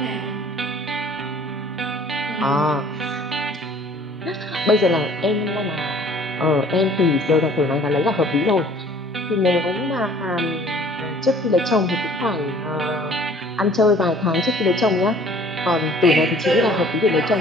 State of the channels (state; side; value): normal; both; correlation 0.53